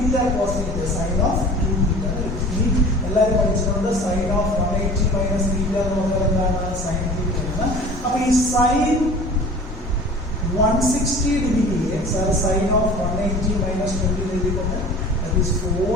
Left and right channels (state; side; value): normal; both; correlation 0.43